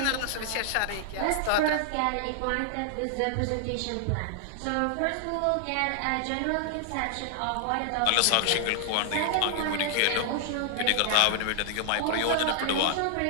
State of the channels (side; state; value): both; different; correlation -0.01